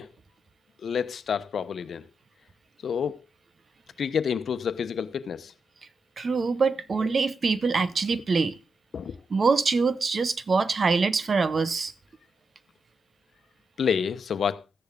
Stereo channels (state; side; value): normal; both; correlation 0.84